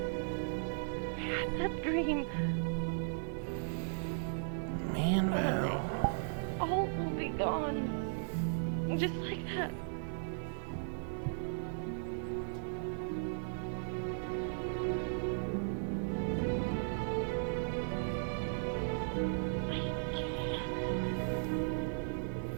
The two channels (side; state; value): left; silent; 53 dB below the other